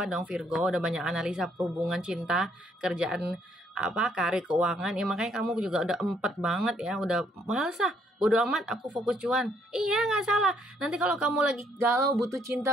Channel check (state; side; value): normal; both; correlation 0.69